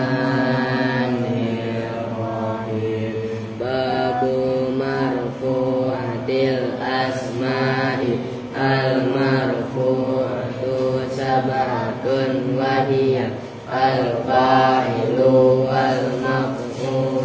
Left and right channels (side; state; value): both; identical; correlation 1.00